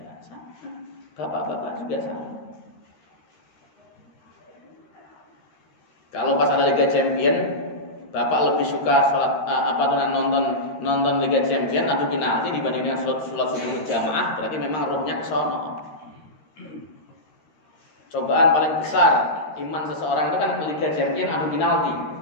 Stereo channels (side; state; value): right; late; 13 ms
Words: sama. Bapak-bapak juga sama. Kalau pas ada Liga Champion, bapak lebih suka nonton Liga Champion adu penalti dibanding dengan sholat subuh berjamaah, berarti memang rohnya ke sono. Cobaan paling besar iman seseorang itu kan Liga Champion adu penalti,